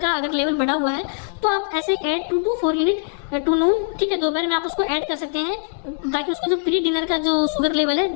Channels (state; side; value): silent; right; digital silence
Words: अगर लेवल बढ़ा हुआ है, तो आप ऐसे ऐड 2 to 4 यूनिट टू नून, ठीक है, दोपहर में आप उसको ऐड कर सकते हैं, ताकि उसका जो प्री डिनर का जो शुगर लेवल है